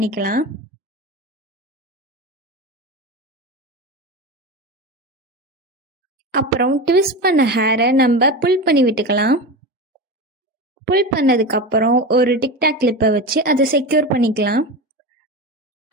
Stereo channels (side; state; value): both; normal; correlation 0.24